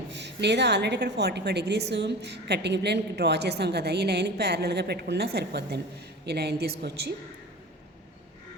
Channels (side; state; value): both; normal; correlation 0.34